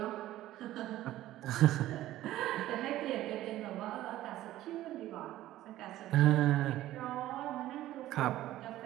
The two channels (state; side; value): quieter; left; 14.6 dB